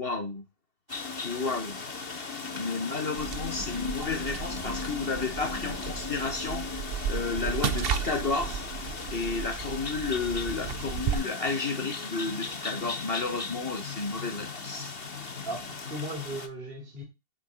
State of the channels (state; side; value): late; left; 2.7 ms